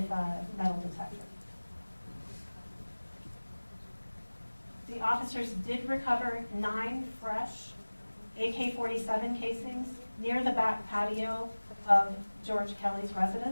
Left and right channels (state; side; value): inverted; both; correlation -1.00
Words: a metal detector. The officers did recover 9 fresh AK-47 casings near the back patio of George Kelly's